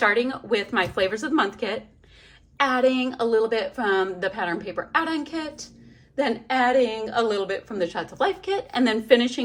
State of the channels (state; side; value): identical; both; correlation 1.00